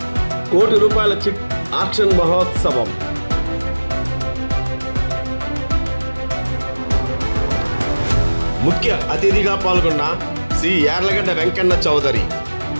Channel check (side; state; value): both; inverted; correlation -1.00